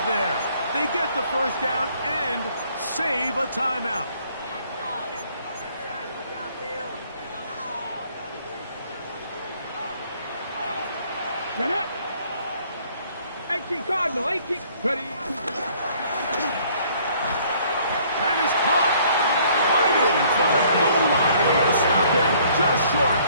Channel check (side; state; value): both; inverted; correlation -0.60